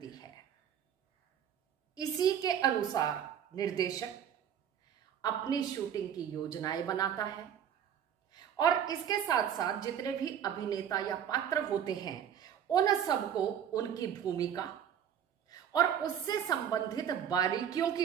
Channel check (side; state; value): left; quieter; 9.1 dB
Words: है। इसी के अनुसार निर्देशक अपनी शूटिंग की योजनाएं बनाता है और इसके साथ साथ जितने भी अभिनेता या पात्र होते हैं, उन सबको उनकी भूमिका और उससे संबंधित बारीकियों